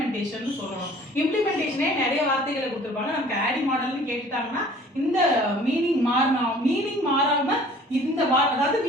சொல்லணும். இம்ப்ளிமெண்டேஷனே நிறைய வார்த்தைகளை கொடுத்துருப்பாங்க. நமக்கு ஆடி மாடல்னு கேட்டுட்டாங்கன்னா இந்த மீனிங் மாறாம இந்த அதாவது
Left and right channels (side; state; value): both; normal; correlation 0.51